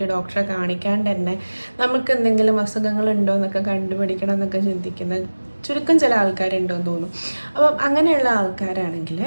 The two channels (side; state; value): both; inverted; correlation -1.00